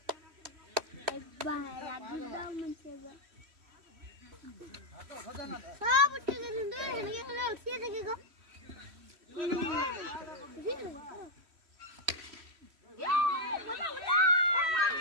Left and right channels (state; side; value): late; left; 3.1 ms